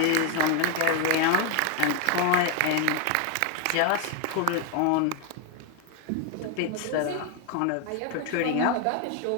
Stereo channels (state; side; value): different; both; correlation 0.01